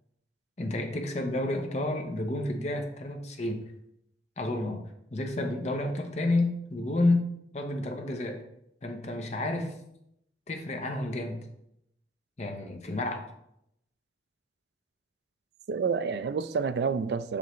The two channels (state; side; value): normal; both; correlation 0.58